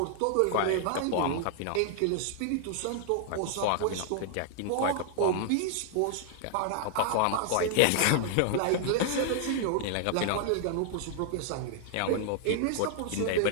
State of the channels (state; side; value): different; both; correlation 0.00